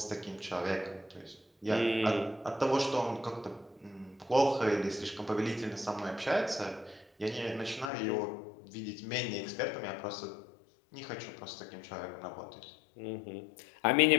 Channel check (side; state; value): right; drops out; at 7.9 s